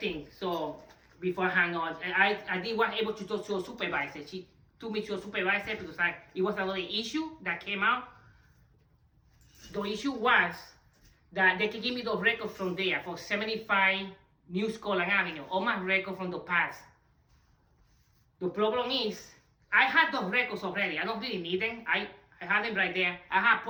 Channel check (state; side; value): identical; both; correlation 1.00